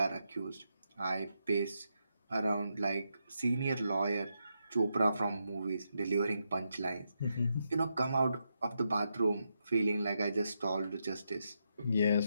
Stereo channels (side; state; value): both; inverted; correlation -0.83